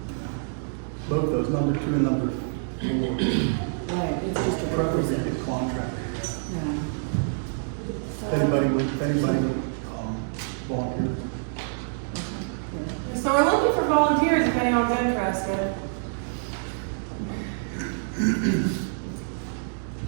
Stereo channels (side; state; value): left; silent; digital silence